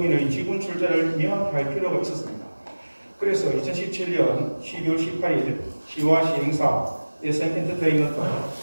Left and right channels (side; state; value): both; inverted; correlation -1.00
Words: 지분 출자를 명확히 할 필요가 있었습니다. 그래서 2017년 12월 18일 시와 시행사 SM 엔터테인먼트,